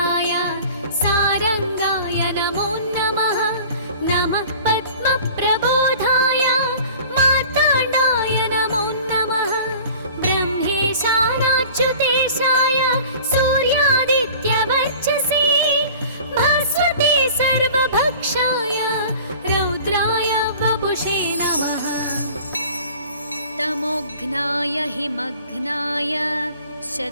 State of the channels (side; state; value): both; inverted; correlation -0.44